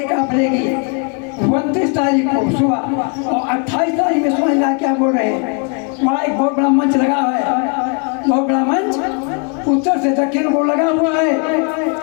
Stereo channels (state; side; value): quieter; right; 36.6 dB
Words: काफले की। 29 तारीख को सुबह और 28 तारीख में स्वामी महाराज क्या बोल रहे हैं, वहाँ एक बहुत बड़ा मंच लगा है, बहुत बड़ा मंच उत्तर से दक्षिण को लगा हुआ है।